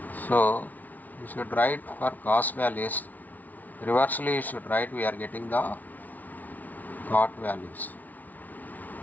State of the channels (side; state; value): right; late; 0.078 ms